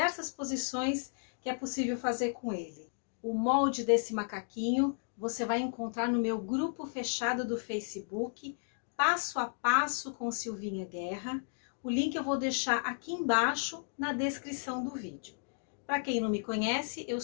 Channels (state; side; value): silent; right; digital silence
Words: posições que é possível fazer com ele. O molde desse macaquinho você vai encontrar no meu grupo fechado do Facebook, Passo a Passo com Silvinha Guerra. O link eu vou deixar aqui embaixo na descrição do vídeo. Para quem não me conhece, eu